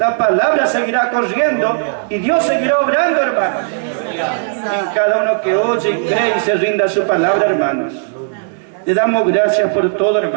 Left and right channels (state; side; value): silent; left; digital silence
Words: palabra seguirá corriendo y Dios seguirá obrando, hermanos. En cada uno que oye y cree y se rinda a su palabra, hermanos. Le damos gracias por todo,